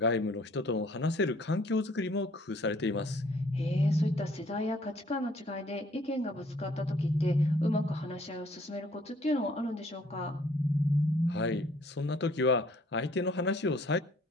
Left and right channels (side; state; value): both; normal; correlation 0.60